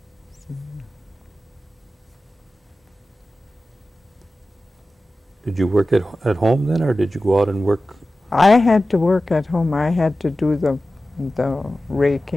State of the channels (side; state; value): both; normal; correlation 0.95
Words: So, did you work at home then, or did you go out and work? I had to work at home. I had to do the